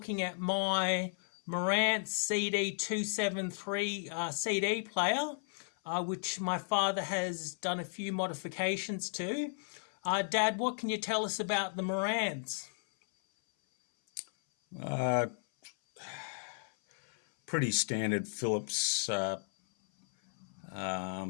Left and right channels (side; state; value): right; silent; 55 dB below the other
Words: at my Marantz CD273 CD player, which my father has done a few modifications to. Dad, what can you tell us about the Marantz? Pretty standard Philips